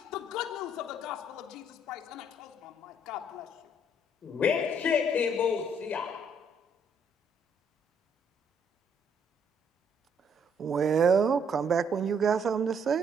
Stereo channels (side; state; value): both; normal; correlation 0.68